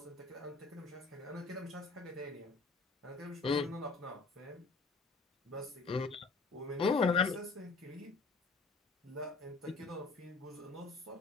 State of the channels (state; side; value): quieter; right; 3.8 dB